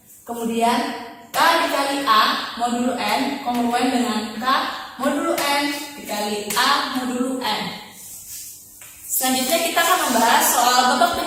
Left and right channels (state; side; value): identical; both; correlation 1.00